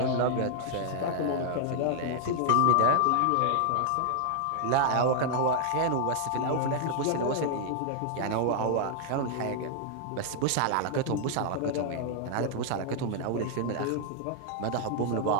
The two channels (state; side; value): different; both; correlation 0.00